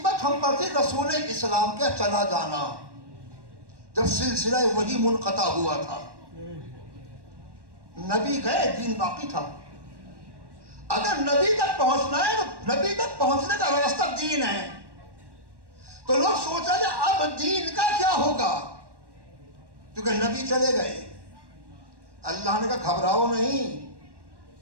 हम पर थी रसूल इस्लाम का चला जाना, जब सिलसिला वही मुनक़ता हुआ था। नबी गए, दीन बाकी था। अगर नबी तक पहुंचना है तो नबी तक पहुंचने का रास्ता दीन है। तो लोग सोचा जाए अब दीन का क्या होगा, क्योंकि नबी चले गए। अल्लाह ने कहा घबराओ नहीं,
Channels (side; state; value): left; late; 1.1 ms